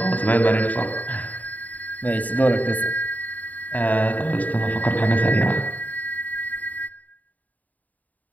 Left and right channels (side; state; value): right; late; 0.077 ms